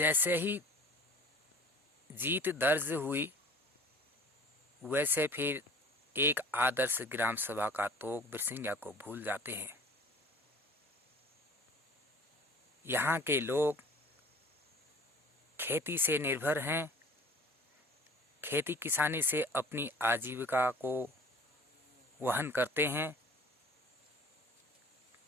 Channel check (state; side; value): normal; both; correlation 0.46